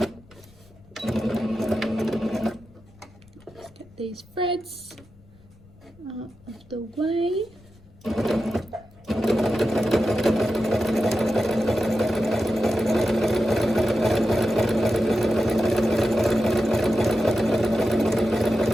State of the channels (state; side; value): noise; left; rumble, 26 dB below the sound